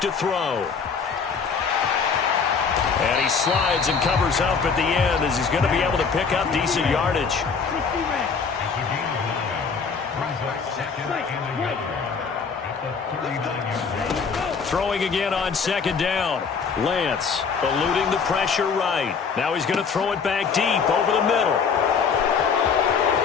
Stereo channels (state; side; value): quieter; right; 5.7 dB